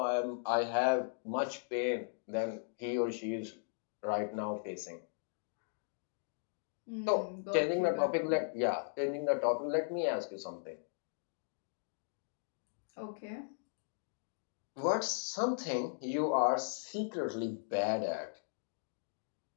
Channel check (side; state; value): right; silent; digital silence